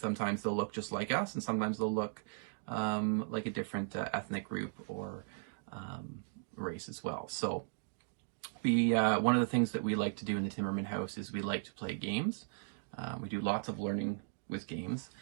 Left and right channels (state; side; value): silent; left; digital silence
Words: Sometimes they'll look just like us, and sometimes they'll look like a different ethnic group or race as well. So one of the things that we like to do in the Timmerman House is we like to play games. We do lots of learning with games,